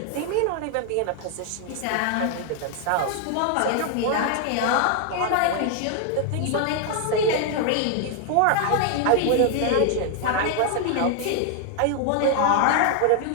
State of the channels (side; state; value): both; different; correlation 0.00